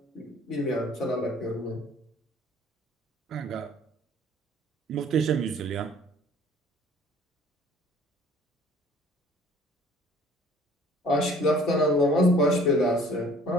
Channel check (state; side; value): normal; both; correlation 0.53